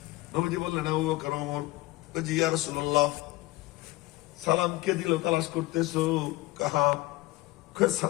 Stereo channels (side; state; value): right; quieter; 19.4 dB